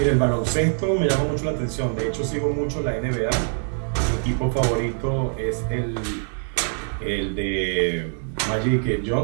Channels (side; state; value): left; silent; 62 dB below the other